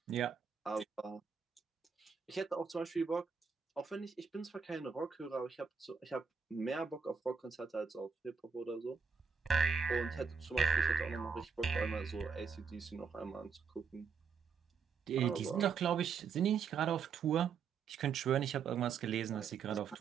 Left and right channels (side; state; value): left; quieter; 6.0 dB